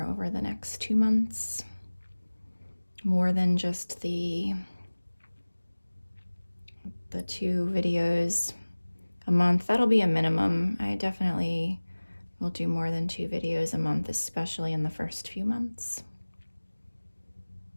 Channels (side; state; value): both; inverted; correlation -1.00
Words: over the next 2 months. More than just the 2 videos a month. That'll be a minimum. I definitely will do more than 2 videos a month, especially in the first few months,